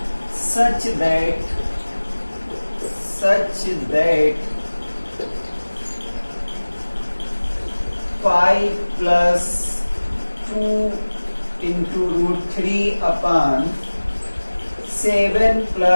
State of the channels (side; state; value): both; inverted; correlation -1.00